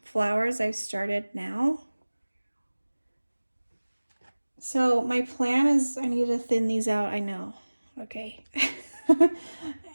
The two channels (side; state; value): both; inverted; correlation -1.00